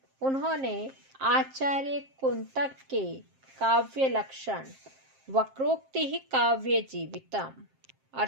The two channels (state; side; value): late; left; 7.5 ms